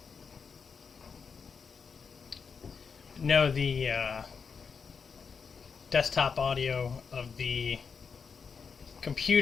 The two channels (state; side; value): quieter; right; 5.8 dB